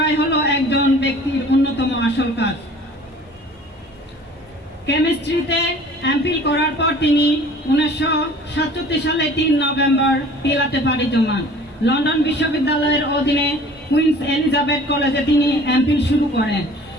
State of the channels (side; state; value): both; normal; correlation 0.48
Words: হলো একজন ব্যক্তির অন্যতম আসল কাজ। কেমিস্ট্রিতে এমফিল করার পর তিনি 1967 সালে 3 নভেম্বর পিলাতে পাড়ি জমান। লন্ডন বিশ্ববিদ্যালয়ের অধীনে কুইন্স এলিজাবেথ কলেজে তিনি এমফিল শুরু করেন।